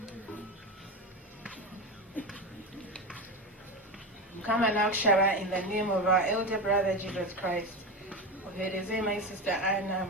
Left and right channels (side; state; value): both; normal; correlation 0.20